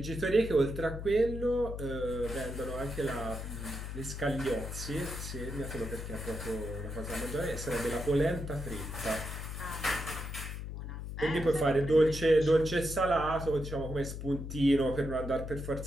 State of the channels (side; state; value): left; noise; hum, 7 dB below the sound